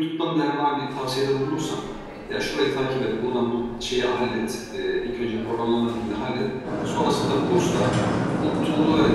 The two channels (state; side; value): identical; both; correlation 1.00